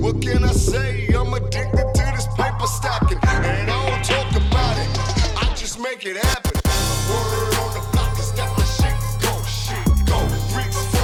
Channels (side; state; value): both; identical; correlation 1.00